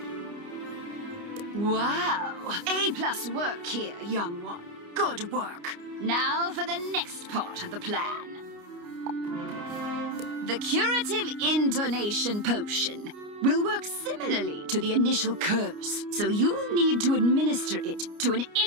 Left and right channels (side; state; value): left; late; 29 ms